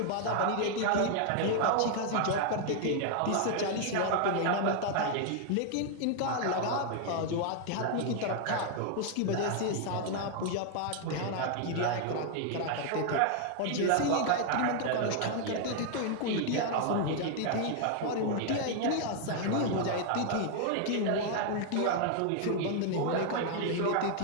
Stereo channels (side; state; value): both; different; correlation 0.00